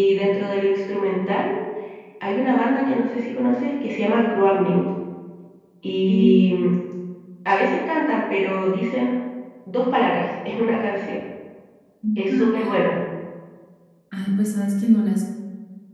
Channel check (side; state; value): both; identical; correlation 1.00